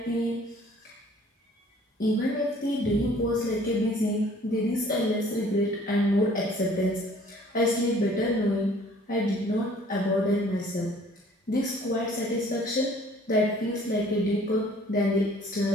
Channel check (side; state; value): both; normal; correlation 0.55